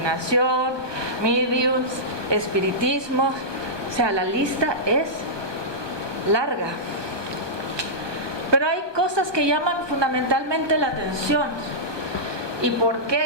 mediums, espiritismo. O sea, la lista es larga. Pero hay cosas que llaman fundamentalmente la atención. ¿Y por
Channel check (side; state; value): left; late; 1.2 ms